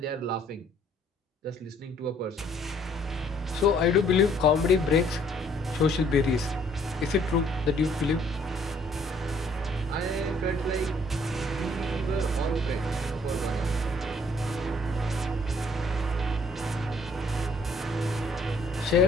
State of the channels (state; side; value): normal; both; correlation 0.63